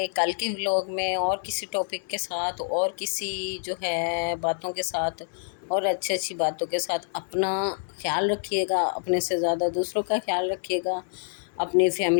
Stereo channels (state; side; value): silent; right; digital silence